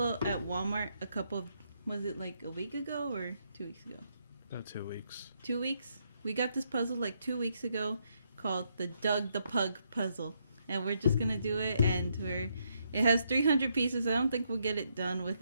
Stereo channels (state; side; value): inverted; both; correlation -0.77